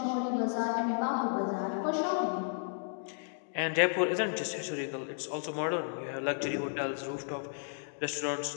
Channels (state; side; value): silent; right; digital silence